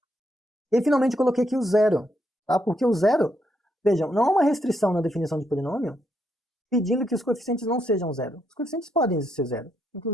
E finalmente coloquei aqui o zero, tá? Porque o zero, vejam, não há uma restrição na definição de polinômio pedindo que os coeficientes não sejam zero. Os coeficientes podem ser zero,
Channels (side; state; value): both; normal; correlation 0.78